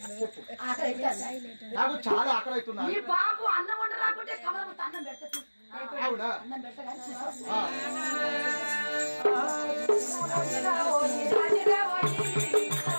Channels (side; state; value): both; inverted; correlation -1.00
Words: ఆకలి నాకు చాలా ఆకలి అవుతున్నా ఈ బాబు అన్నం వంట రాకుంటే కమలము అన్నం పెడతా అవునా అన్నం పెట్టగా